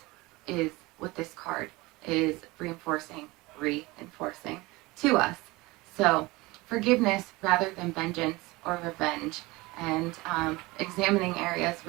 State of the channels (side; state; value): left; quieter; 22.2 dB